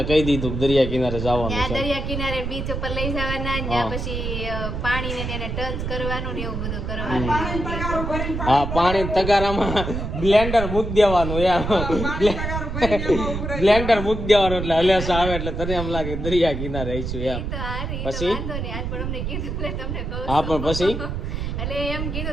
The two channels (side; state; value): right; noise; rumble, 4 dB below the sound